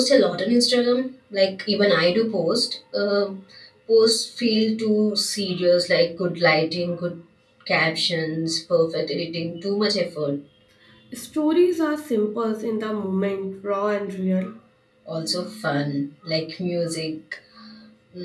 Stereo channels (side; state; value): both; identical; correlation 1.00